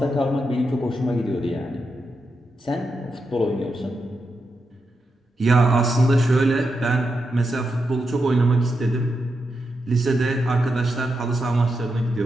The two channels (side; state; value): both; normal; correlation 0.86